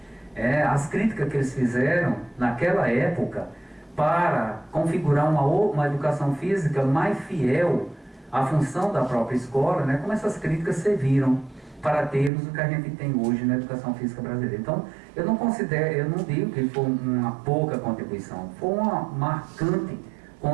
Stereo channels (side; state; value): left; drops out; at 12.3 s